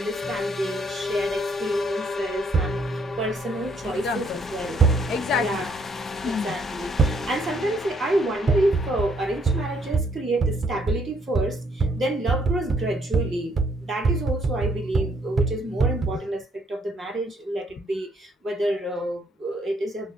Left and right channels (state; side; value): normal; both; correlation 0.69